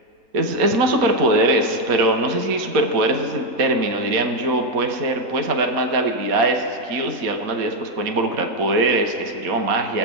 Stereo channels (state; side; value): late; left; 4.1 ms